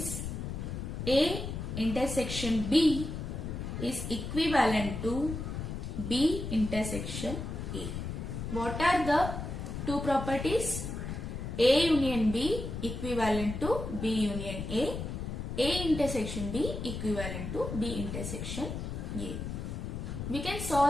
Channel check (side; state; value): left; noise; rumble, 5 dB below the sound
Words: A intersection B is equivalent to B intersection A. What are the two properties? A union B equivalent to B union A intersection B equivalent to B intersection A. We can